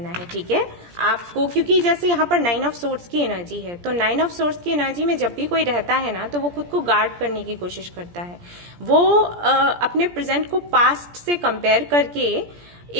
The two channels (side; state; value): left; late; 17 ms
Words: है। ठीक है, आपको, क्योंकि जैसे यहाँ पर 9 ऑफ सोर्ड्स की एनर्जी है, तो 9 ऑफ सोर्ड्स की एनर्जी में जब भी कोई रहता है ना, तो वो खुद को गार्ड करने की कोशिश करता है। वो अपने प्रेजेंट को पास्ट से कंपेयर करके